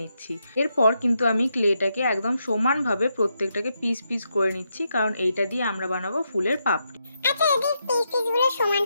নিচ্ছি। এরপর কিন্তু আমি ক্লেটাকে একদম সমানভাবে প্রত্যেকটাকে পিস পিস করে নিচ্ছি, কারণ এইটা দিয়ে আমরা বানাবো ফুলের পাপড়ি। আচ্ছা যদি পিসগুলো সমান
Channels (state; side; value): inverted; both; correlation -0.82